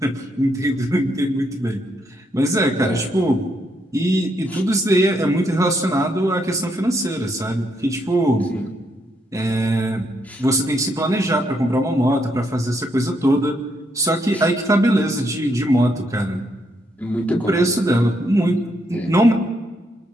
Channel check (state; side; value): normal; both; correlation 0.76